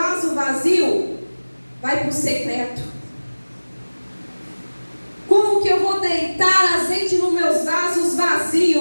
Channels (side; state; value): both; inverted; correlation -1.00